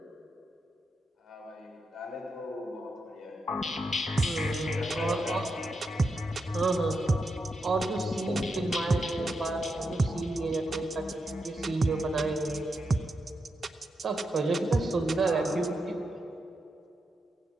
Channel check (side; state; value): both; normal; correlation 0.85